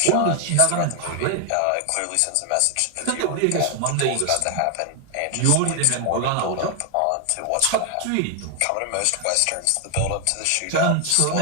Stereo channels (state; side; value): different; both; correlation 0.00